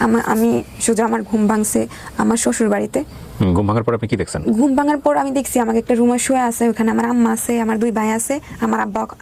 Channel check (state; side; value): identical; both; correlation 1.00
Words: আমি সোজা আমার ঘুম ভাঙছে আমার শ্বশুর বাড়িতে। ঘুম ভাঙার পর আপনি কি দেখছেন? ঘুম ভাঙার পর আমি দেখছি আমাকে একটা রুমে শুয়ে আছে, ওখানে আমার আম্মা আছে, আমার 2 ভাই আছে, আমার আব্বা